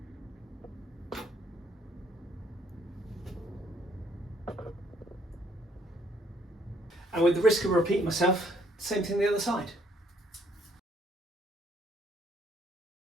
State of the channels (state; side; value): normal; both; correlation 0.67